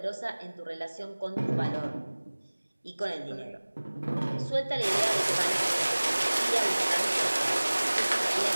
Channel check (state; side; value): inverted; both; correlation -1.00